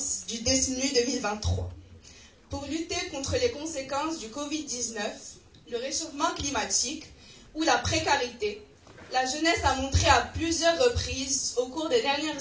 du DESNU 2023. Pour lutter contre les conséquences du Covid-19, le réchauffement climatique ou la précarité, la jeunesse a montré à plusieurs reprises au cours des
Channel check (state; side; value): identical; both; correlation 1.00